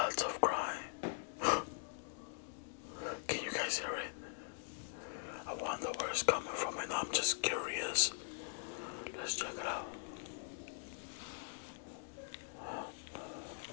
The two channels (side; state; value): right; silent; digital silence